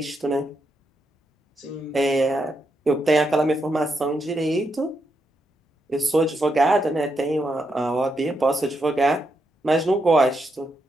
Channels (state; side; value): normal; both; correlation 0.82